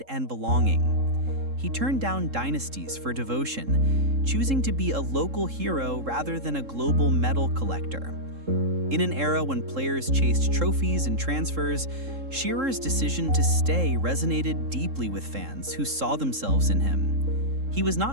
and belonging. He turned down dynasties for devotion, choosing to be a local hero rather than a global medal collector. In an era when players chased trophies and transfers, Shearer's decision to stay resonated deeply with fans who saw themselves in him. He was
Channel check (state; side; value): late; left; 3.7 ms